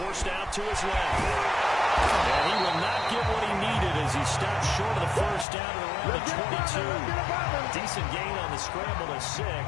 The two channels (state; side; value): drops out; right; at 5.5 s